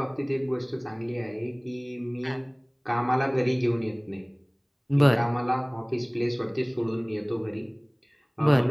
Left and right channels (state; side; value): identical; both; correlation 1.00